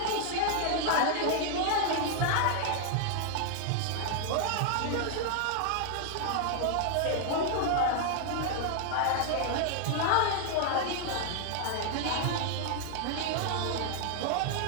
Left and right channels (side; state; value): both; different; correlation 0.00